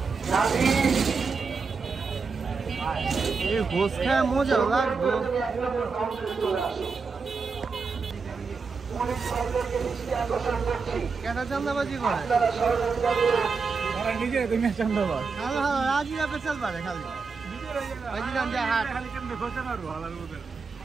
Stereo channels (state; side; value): quieter; left; 4.9 dB